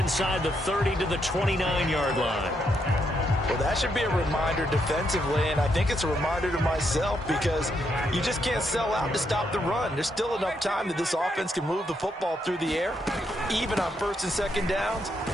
the 30 to the 29-yard line. Well, that should be a reminder defensively, and I think it's a reminder to myself because you just can't sell out to stop the run. There's still enough time that this offense can move the football through the air, even on 1st and 2nd downs,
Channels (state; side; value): normal; both; correlation 0.78